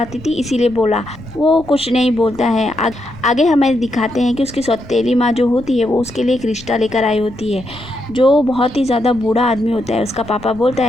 थी इसीलिए बोला। वो कुछ नहीं बोलता है। आगे हमें दिखाते हैं कि उसकी सौतेली माँ जो होती है वो उसके लिए एक रिश्ता लेकर आई होती है, जो बहुत ही ज़्यादा बूढ़ा आदमी होता है। उसका पापा बोलता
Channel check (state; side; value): noise; left; rumble, 19 dB below the sound